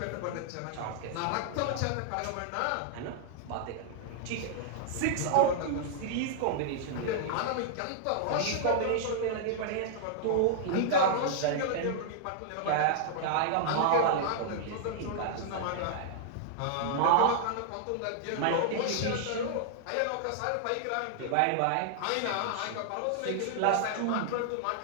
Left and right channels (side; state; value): both; different; correlation -0.01